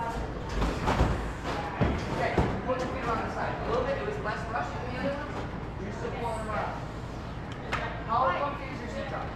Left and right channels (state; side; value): identical; both; correlation 1.00